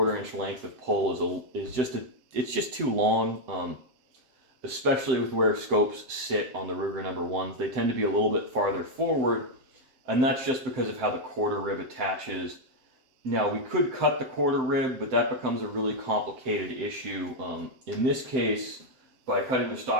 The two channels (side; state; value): left; late; 7.8 ms